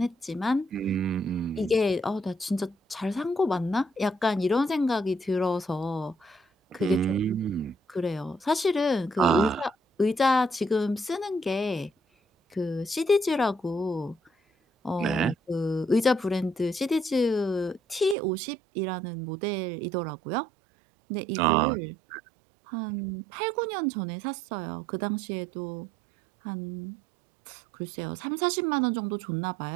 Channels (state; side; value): drops out; left; at 18.2 s